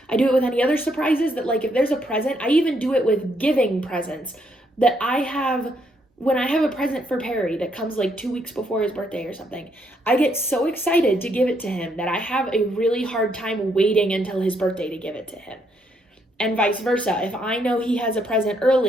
I do it with any other surprises, that like if there's a present, I even do it with giving presents, that when I have a present for Perry that comes like 2 weeks before his birthday or something, I get so excited to give it to him that I have a really hard time waiting until his birthday to give it to him. And vice versa. If I know he has a present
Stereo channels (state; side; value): normal; both; correlation 0.73